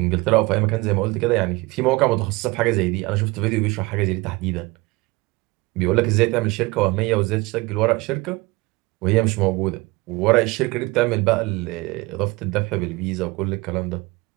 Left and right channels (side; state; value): left; quieter; 23.2 dB